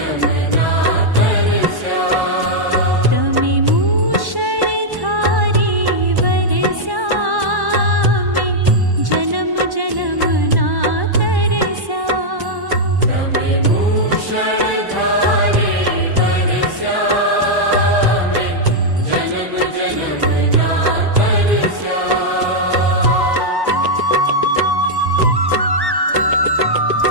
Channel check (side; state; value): left; late; 1.1 ms